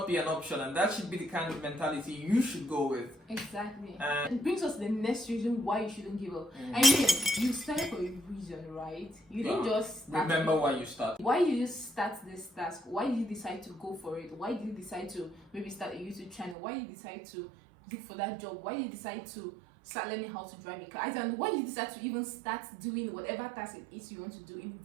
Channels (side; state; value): left; drops out; at 16.6 s